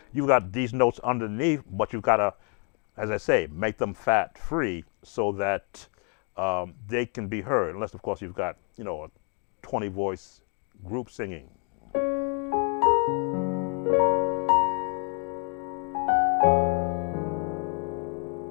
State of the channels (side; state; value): right; quieter; 38.7 dB